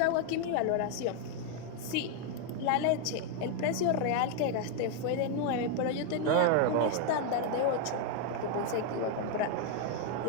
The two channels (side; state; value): both; different; correlation 0.01